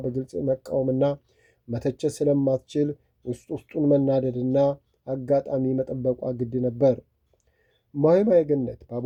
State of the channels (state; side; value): identical; both; correlation 1.00